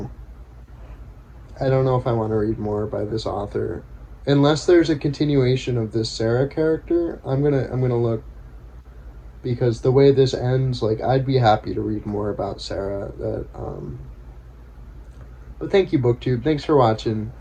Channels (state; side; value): identical; both; correlation 1.00